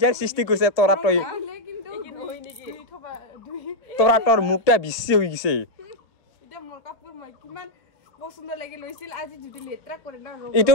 সৃষ্টি কৰিছে তৰা তই কিন্তু হয় নেকি তৰা তোৰ মুখটা বেছি হৈ গৈছে এটা মোৰ কাপোৰ মই কিমান পছন্দ লাগি লৈছিল আজি যদি লেত্ৰা কৰে না এইটো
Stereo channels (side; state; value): right; late; 1.5 ms